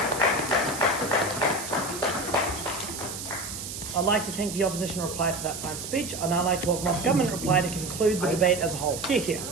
I'd like to thank the opposition reply for that fine speech. I'd now like to welcome up government reply to conclude the debate as a whole. Hear, hear.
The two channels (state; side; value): noise; right; hiss, 8 dB below the sound